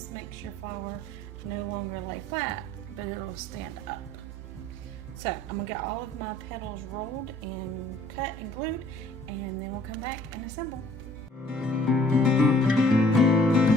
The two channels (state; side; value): normal; both; correlation 0.57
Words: makes your flower no longer lay flat, but it'll stand up. So I'm gonna get all of my petals rolled and cut and glued, and then we'll come back and assemble.